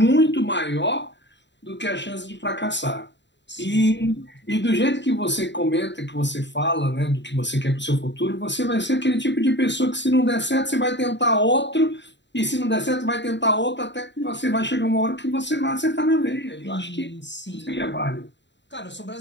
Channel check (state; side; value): late; right; 0.52 ms